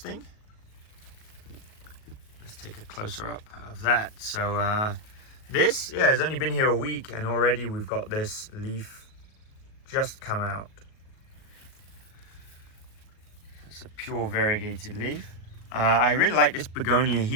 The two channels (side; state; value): right; late; 38 ms